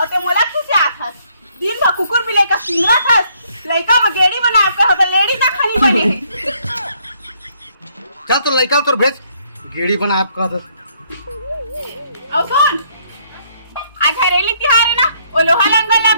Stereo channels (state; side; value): inverted; both; correlation -0.68